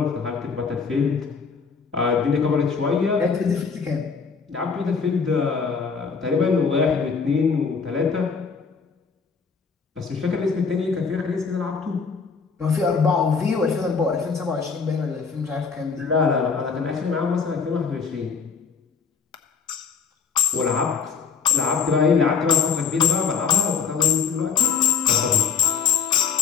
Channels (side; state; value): right; quieter; 5.8 dB